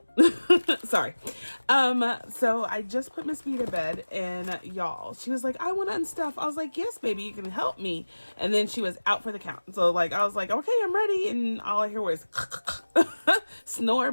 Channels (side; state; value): both; inverted; correlation -1.00